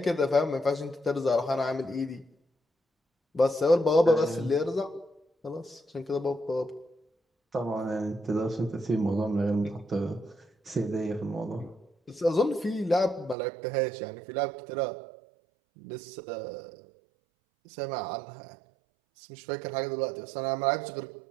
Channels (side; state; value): left; drops out; at 13.4 s